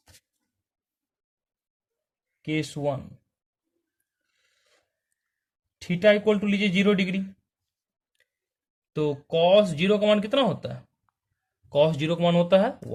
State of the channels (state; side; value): identical; both; correlation 1.00